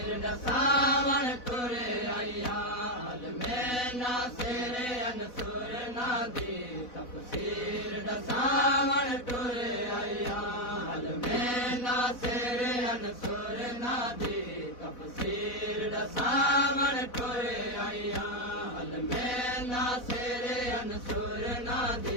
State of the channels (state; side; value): late; right; 4.1 ms